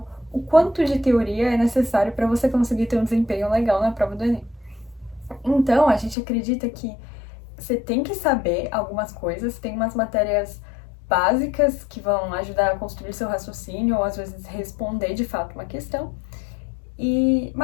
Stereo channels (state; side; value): drops out; right; at 6.2 s